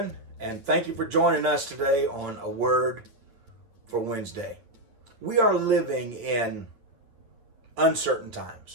and thank you for joining us today on A Word for Wednesday. We are living in uncertain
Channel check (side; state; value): left; late; 9.1 ms